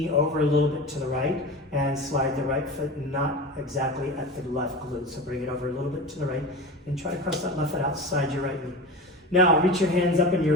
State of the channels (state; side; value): normal; both; correlation 0.29